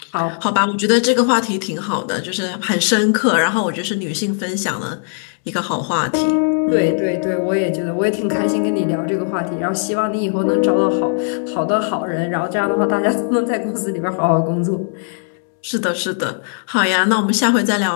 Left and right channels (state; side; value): silent; right; 67 dB below the other